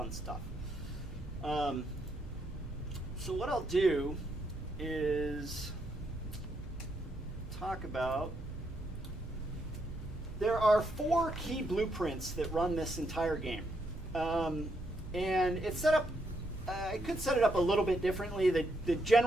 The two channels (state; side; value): noise; right; hum, 13 dB below the sound